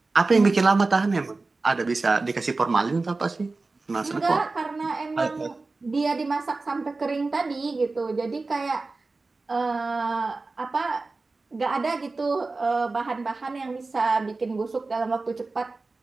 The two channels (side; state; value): left; quieter; 3.6 dB